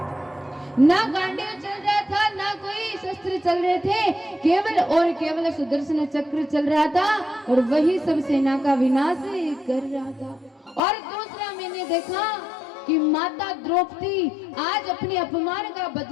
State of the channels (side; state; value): right; drops out; at 10.8 s